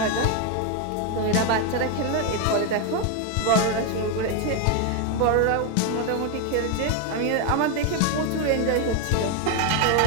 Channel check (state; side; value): different; both; correlation 0.01